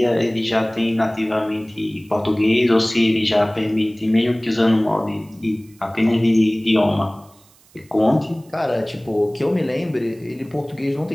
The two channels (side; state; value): right; noise; hiss, 29 dB below the sound